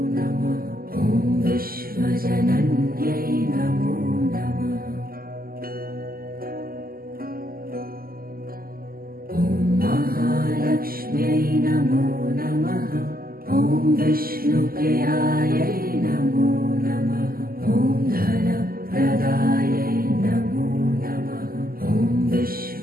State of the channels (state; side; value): late; left; 0.42 ms